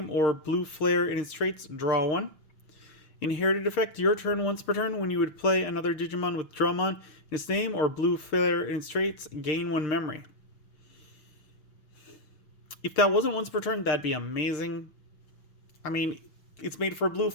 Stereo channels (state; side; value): late; right; 6.5 ms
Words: or Blue Flare in its traits, draw 1. Inherited effect, your turn, once per turn. When you would play another Digimon with Drummon in its name or Blue Flare in its traits, gain 1 memory. If that wasn't once per turn, that'd be amazing. I mean, it's made for a Blue